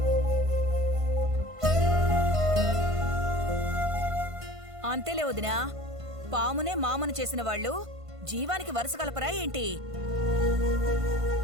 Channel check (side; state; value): left; late; 1.5 ms